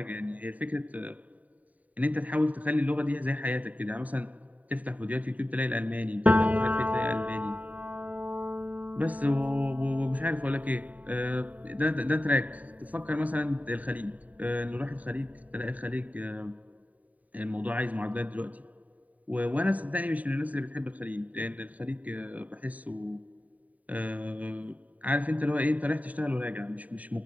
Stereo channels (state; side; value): late; left; 0.071 ms